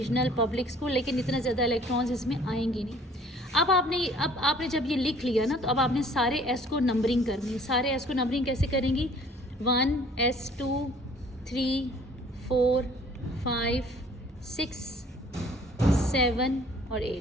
पब्लिक स्कूल, लेकिन इतना ज़्यादा इलेक्ट्रॉन्स इसमें आएंगे नहीं। अब आपने जब ये लिख लिया ना, तो अब आपने सारे S को नंबरिंग करनी है। सारे S को नंबरिंग कैसे करेंगी, 1S 2 3 4 5 6 7 और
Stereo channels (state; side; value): normal; both; correlation 0.55